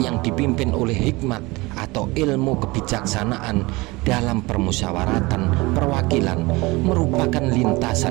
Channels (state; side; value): quieter; left; 23.0 dB